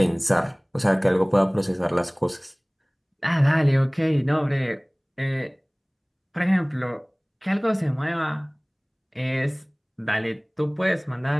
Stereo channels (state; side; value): identical; both; correlation 1.00